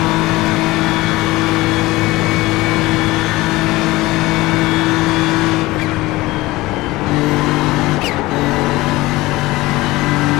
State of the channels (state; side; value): quieter; right; 19.6 dB